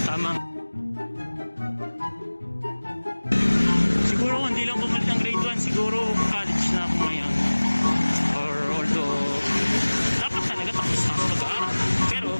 tamang hindi lang bumalik ng grade 1, siguro college na ako ngayon. Or although, dapat talaga tapos na ako mag-aaral. Pero,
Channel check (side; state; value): both; inverted; correlation -1.00